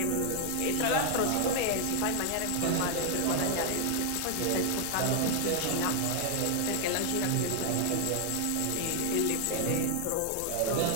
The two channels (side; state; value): both; different; correlation 0.00